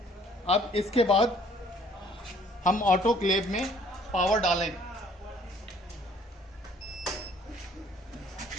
अब इसके बाद हम ऑटोक्लेव में पावर डालें।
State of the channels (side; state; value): both; normal; correlation 0.59